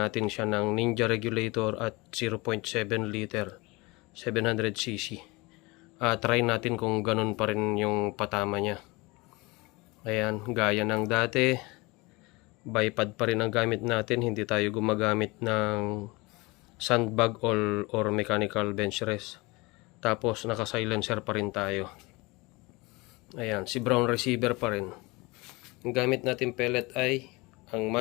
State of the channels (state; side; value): quieter; right; 24.3 dB